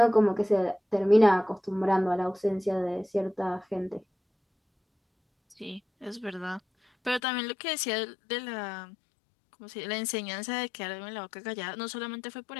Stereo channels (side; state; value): right; drops out; at 7.2 s